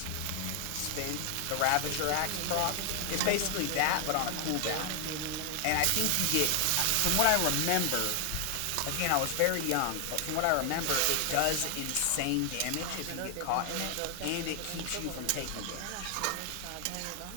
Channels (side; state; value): both; different; correlation 0.00